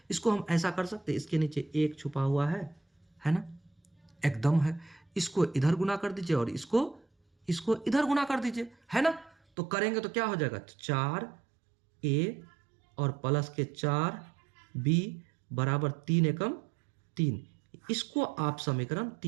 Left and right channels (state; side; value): drops out; left; at 9.3 s